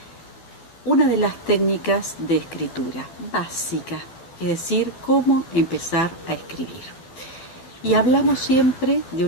una de las técnicas de escritura básica, es decir, cómo empezar a escribir. Y hablamos siempre de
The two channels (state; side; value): late; right; 12 ms